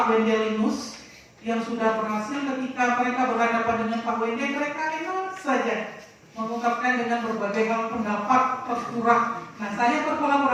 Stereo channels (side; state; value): both; identical; correlation 1.00